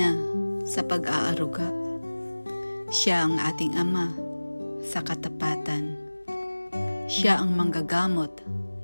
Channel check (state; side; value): inverted; both; correlation -1.00